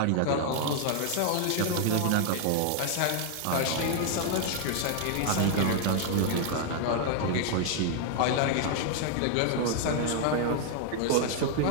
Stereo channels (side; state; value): both; different; correlation 0.00